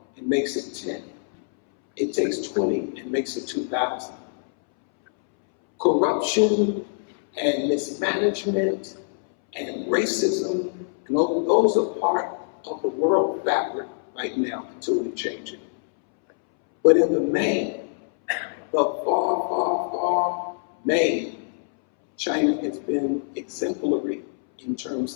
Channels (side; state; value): right; silent; 62 dB below the other